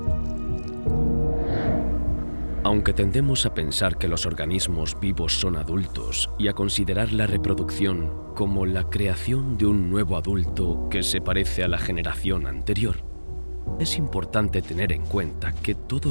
Aunque tendemos a pensar que los organismos vivos son adultos y a considerar la reproducción como la creación de un nuevo adulto que se parece a la generación anterior, es importante tener en cuenta que todo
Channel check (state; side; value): inverted; both; correlation -1.00